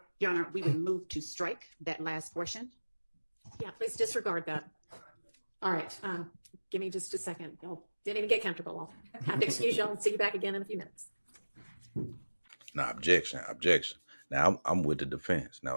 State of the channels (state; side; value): inverted; both; correlation -1.00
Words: Your Honor, we would move to strike that last portion. Yeah, please disregard that. All right, give me just a second. Y'all didn't even get comfortable. I'll have to excuse y'all and see you back again in a few minutes. Now, objection. Now, I'm with the defense.